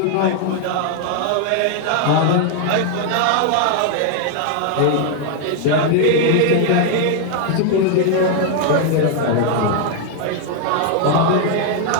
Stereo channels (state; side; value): different; both; correlation 0.00